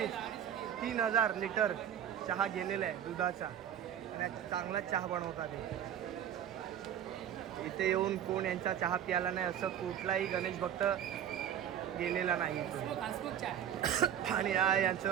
लिटर चहा गेलेला आहे दुधाचा. आणि चांगला चहा बनवतात. इथे येऊन कोण यांचा चहा प्यायला नाही असं कुठलाही गणेश भक्त गेलेला नाही. आणि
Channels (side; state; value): left; quieter; 10.0 dB